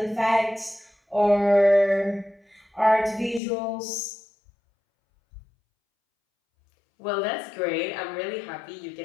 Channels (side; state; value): right; drops out; at 3.4 s